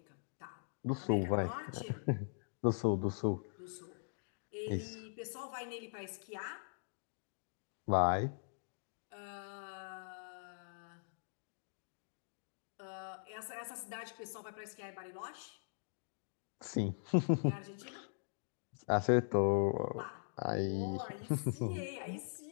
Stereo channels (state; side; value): silent; right; digital silence